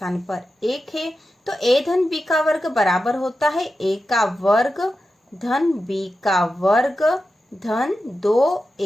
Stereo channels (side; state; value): both; normal; correlation 0.91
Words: पर 1 है। तो a धन b का वर्ग बराबर होता है a का वर्ग धन b का वर्ग धन